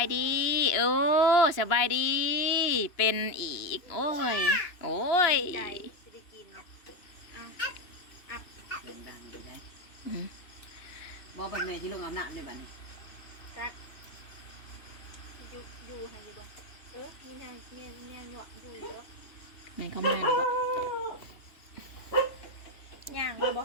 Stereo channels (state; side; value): late; right; 2.9 ms